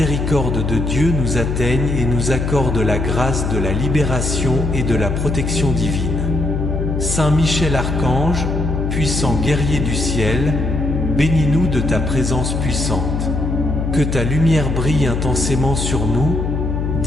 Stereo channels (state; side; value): noise; left; hum, 1 dB below the sound